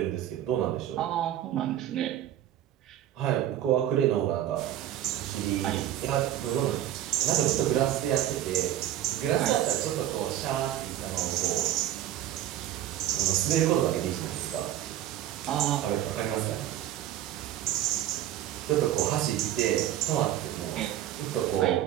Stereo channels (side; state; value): left; quieter; 12.1 dB